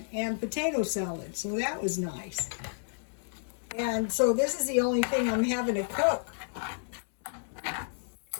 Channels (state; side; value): silent; right; digital silence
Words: and potato salad, so that was nice. And so this is the only thing I'm having to cook.